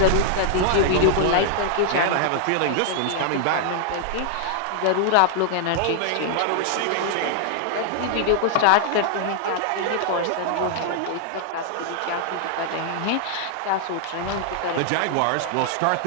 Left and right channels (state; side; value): different; both; correlation 0.00